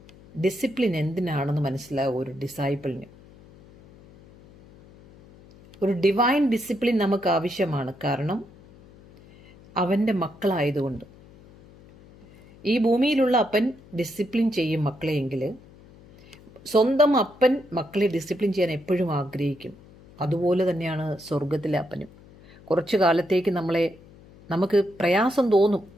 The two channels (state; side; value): noise; left; hum, 23 dB below the sound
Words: ഡിസിപ്ലിൻ എന്തിനാണെന്ന് മനസ്സിലാവും ഒരു ഡിസൈപ്പിളിന്. ഒരു ഡിവൈൻ ഡിസിപ്ലിൻ നമുക്ക് ആവശ്യമാണ്. കാരണം അവൻ്റെ മക്കളായതുകൊണ്ട്. ഈ ഭൂമിയിലുള്ള അപ്പൻ ഡിസിപ്ലിൻ ചെയ്യും മക്കളെയെങ്കിൽ സ്വന്തം അപ്പൻ മക്കളെ ഡിസിപ്ലിൻ ചെയ്യാൻ എപ്പോഴും ആഗ്രഹിക്കും. അതുപോലെ തന്നെയാണ് സ്വർഗത്തിലെ അപ്പനും. കുറച്ചു കാലത്തേക്ക് നമുക്ക് പ്രയാസം തോന്നും,